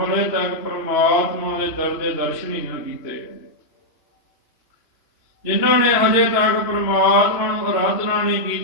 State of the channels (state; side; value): late; right; 2.9 ms